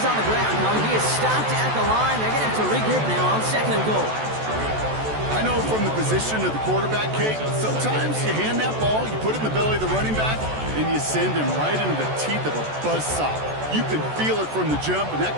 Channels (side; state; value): left; late; 14 ms